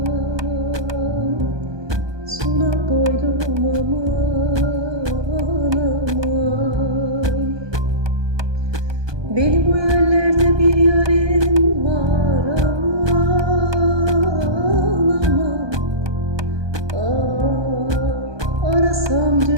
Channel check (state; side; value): late; left; 1.2 ms